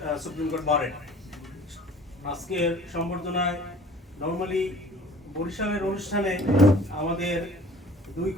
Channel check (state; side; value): normal; both; correlation 0.49